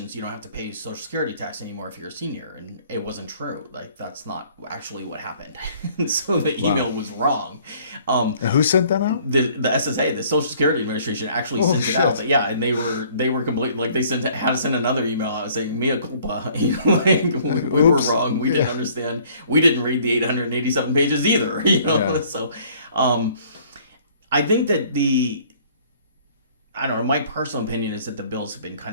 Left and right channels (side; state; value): both; inverted; correlation -0.57